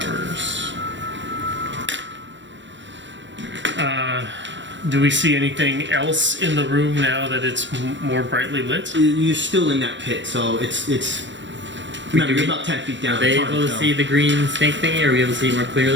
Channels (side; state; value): left; late; 0.54 ms